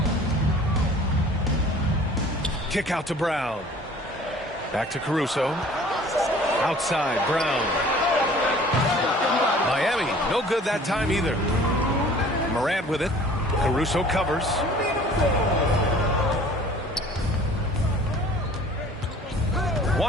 Kick out to Brown. Back to Caruso. Outside, Brown. Miami, No good that time either. Morant with it. Caruso covers.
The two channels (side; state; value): both; normal; correlation 0.49